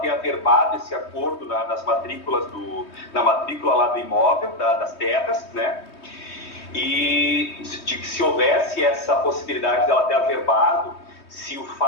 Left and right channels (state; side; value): late; right; 3.2 ms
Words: averbado esse acordo na matrícula lá do imóvel, das terras, né? E se houvesse essa possibilidade dela ter averbado, se o